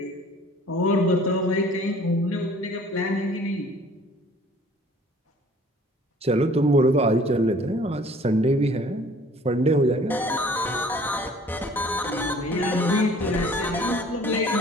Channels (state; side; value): normal; both; correlation 0.53